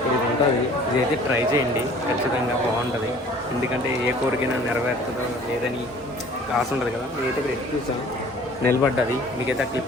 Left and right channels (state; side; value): normal; both; correlation 0.50